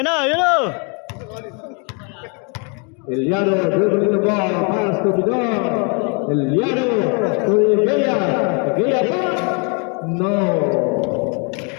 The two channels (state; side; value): quieter; right; 34.4 dB